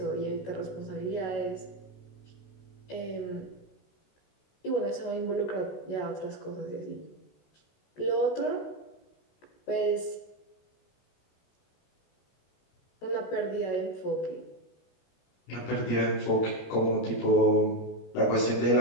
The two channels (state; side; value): late; right; 16 ms